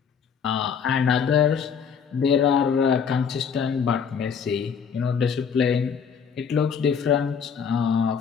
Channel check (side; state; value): right; quieter; 6.7 dB